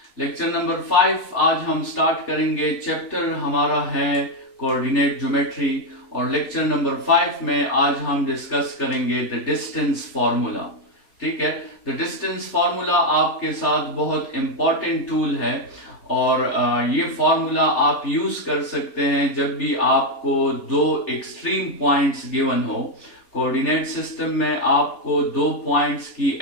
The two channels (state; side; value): late; right; 3.4 ms